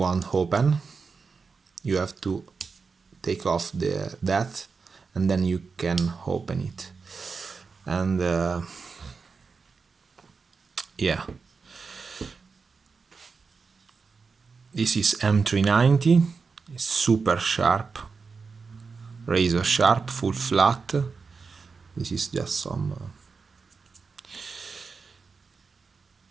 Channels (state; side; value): quieter; left; 4.9 dB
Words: open. You have to take off that, and then you can open it. And yeah, this is M390. It's super sharp, razor sharp, full flat. This is just some